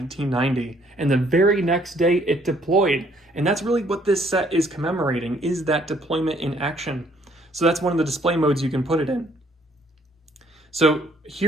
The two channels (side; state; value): both; normal; correlation 0.64